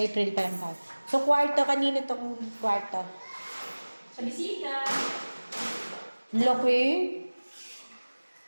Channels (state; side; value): inverted; both; correlation -1.00